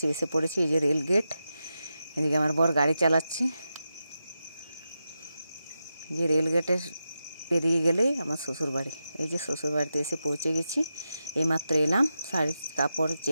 এসে পড়েছি। এই যে রেল গেট, এদিকে আমার বর গাড়ি চালাচ্ছে। যে রেল গেটের পেরিয়ে গেলেই আমার শ্বশুরবাড়ি। এই যে শ্বশুরবাড়িতে এসে পৌঁছে গেছি। এইমাত্র এলাম শাড়ি কাপড়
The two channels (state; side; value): inverted; both; correlation -0.89